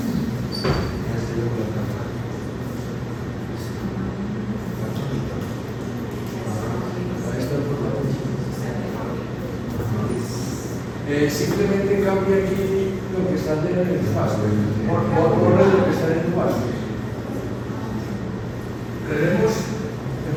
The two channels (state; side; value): identical; both; correlation 1.00